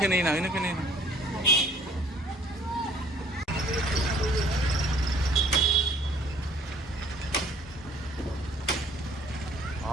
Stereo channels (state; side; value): normal; both; correlation 0.57